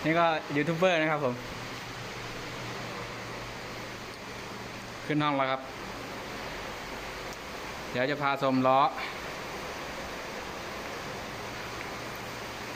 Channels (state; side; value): identical; both; correlation 1.00